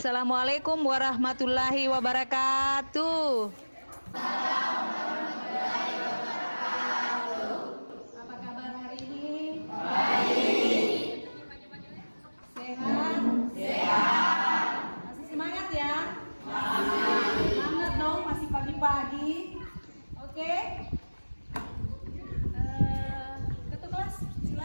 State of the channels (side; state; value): both; inverted; correlation -1.00